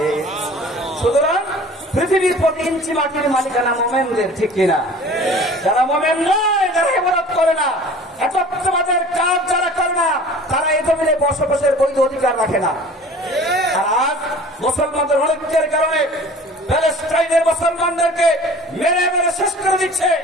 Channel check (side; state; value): both; normal; correlation 0.45